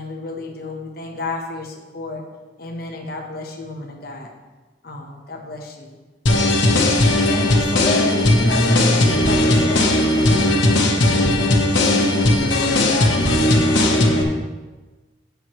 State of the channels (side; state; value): both; normal; correlation 0.57